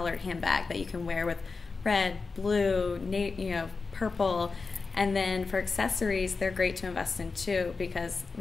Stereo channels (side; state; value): right; quieter; 4.4 dB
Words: handbag that you can wear with red, blue, purple. And then for accessories, they're great to invest in too, because